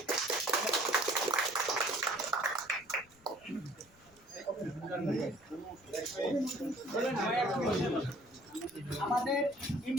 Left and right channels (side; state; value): left; noise; rumble, 29 dB below the sound